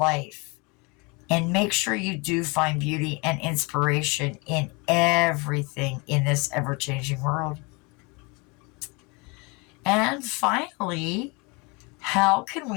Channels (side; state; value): right; quieter; 28.6 dB